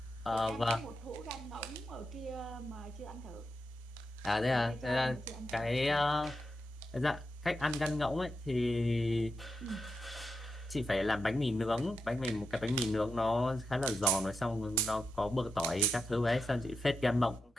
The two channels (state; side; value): normal; both; correlation 0.86